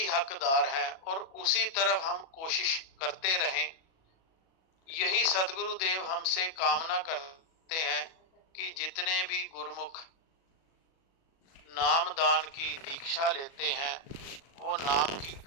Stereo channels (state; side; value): late; right; 37 ms